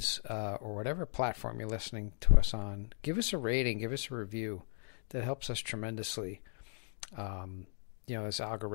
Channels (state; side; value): silent; right; 53 dB below the other